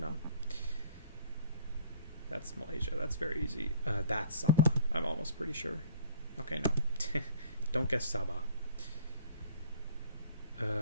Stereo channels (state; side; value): inverted; both; correlation -0.52